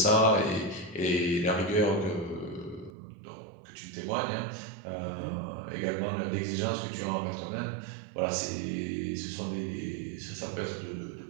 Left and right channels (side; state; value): left; drops out; at 2.9 s